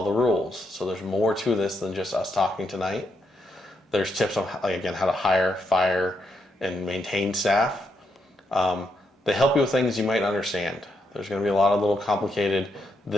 the rules. So there's more to this than just us talking tonight. There's tips on, how to hire, fire, and maintain staff. They help you with things you might not understand. There's going to be a lot of little complicated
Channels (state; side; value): normal; both; correlation 0.80